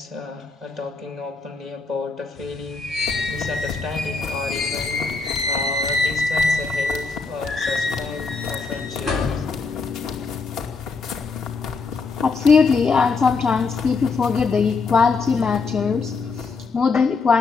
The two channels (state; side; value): quieter; right; 4.5 dB